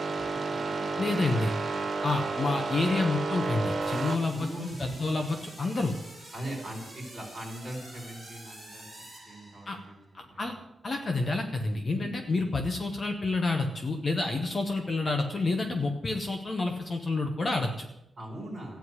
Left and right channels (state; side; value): normal; both; correlation 0.87